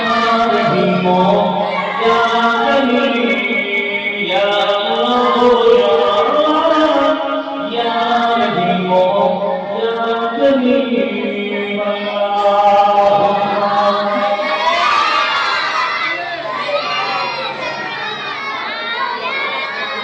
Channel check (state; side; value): identical; both; correlation 1.00